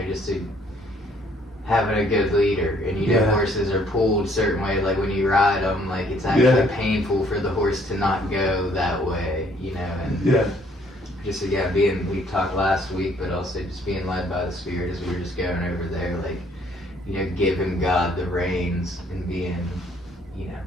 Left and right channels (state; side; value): normal; both; correlation 0.63